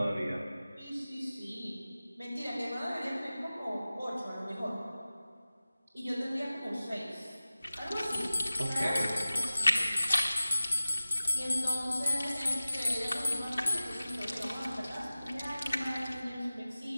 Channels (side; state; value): both; inverted; correlation -0.97